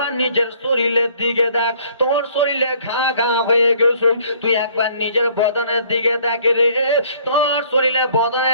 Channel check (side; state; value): both; inverted; correlation -0.58